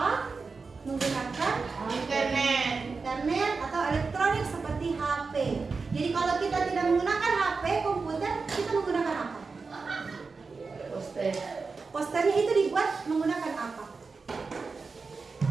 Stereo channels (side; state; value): left; quieter; 4.5 dB